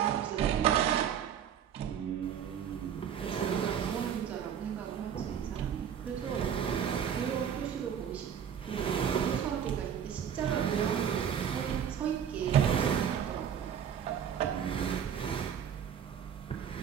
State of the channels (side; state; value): left; quieter; 8.6 dB